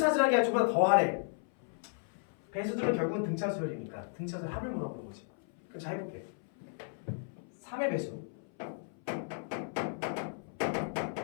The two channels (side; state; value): right; silent; 55 dB below the other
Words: 게 아니라 전부 다 더하래. 배수들은 결국은 등차수열이니까 등차수열 합을 물어보는 거지. 그럼 잘 해볼게. 3의 배수를